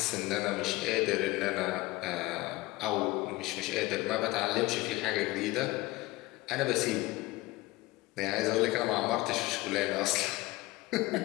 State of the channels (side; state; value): right; quieter; 19.8 dB